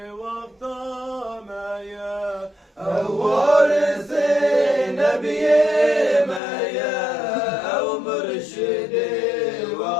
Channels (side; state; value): right; drops out; at 6.4 s